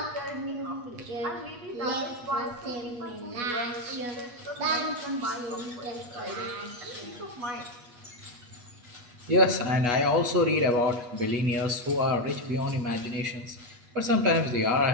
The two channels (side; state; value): left; late; 8.3 ms